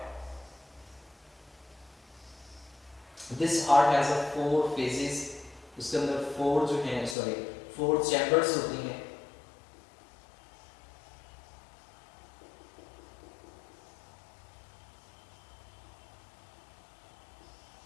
This heart has a 4 phases, उसके अंदर 4 जो हैं 4 चैम्बर्स होती हैं।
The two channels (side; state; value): right; drops out; at 7.2 s